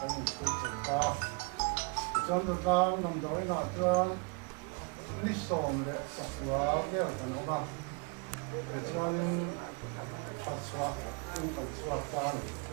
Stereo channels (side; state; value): left; quieter; 34.2 dB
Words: cái những cái chuyện ta cho nó sang nằm đó là cho Mizo để chhuak cái cái nó ba thì cho nên chhuak cũng phải chhuak ta